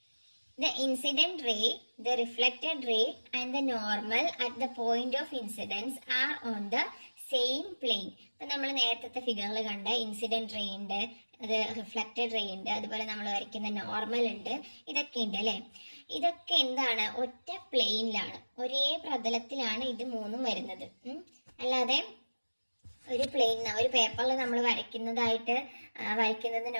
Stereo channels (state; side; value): inverted; both; correlation -1.00